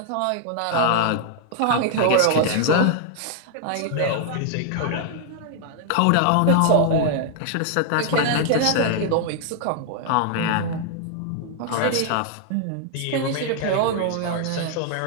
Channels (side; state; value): both; different; correlation -0.01